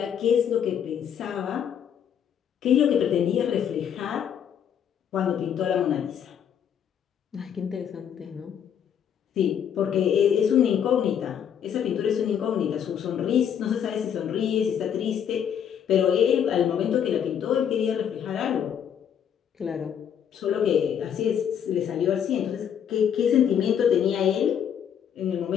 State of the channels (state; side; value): quieter; right; 8.7 dB